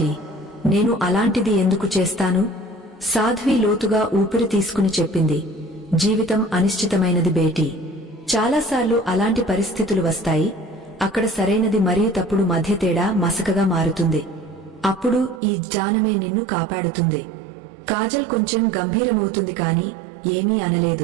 నేను అలాంటిది ఎందుకు చేస్తాను? సాధ్వి లోతుగా ఊపిరి తీసుకుని చెప్పింది. జీవితం అనిశ్చితమైనది బేటీ. చాలాసార్లు అలాంటి పరిస్థితులు వస్తాయి. అక్కడ సరైనది మరియు తప్పుడు మధ్య తేడా మసకగా మారుతుంది. అప్పుడు ఈ జ్ఞానమే నిన్ను కాపాడుతుంది. కాజల్ కొంచెం గంభీరమవుతుంది కాని ఏమీ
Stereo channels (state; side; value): drops out; left; at 15.4 s